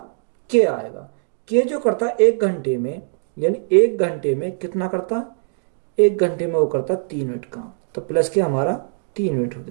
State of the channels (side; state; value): left; silent; 65 dB below the other